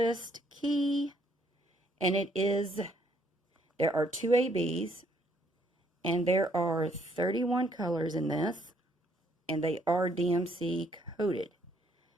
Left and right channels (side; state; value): both; normal; correlation 0.68